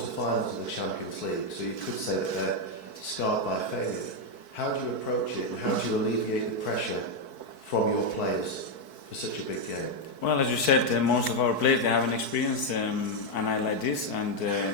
of the Champions League, so you could say that they're scarred by failure. How do you approach it, and how do you alleviate the pressure from your players for such a big game? Well, as you said, most of our players, they haven't experienced a night like this,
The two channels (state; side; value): late; right; 4.6 ms